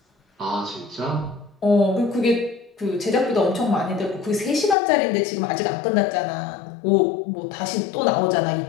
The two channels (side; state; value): right; drops out; at 4.8 s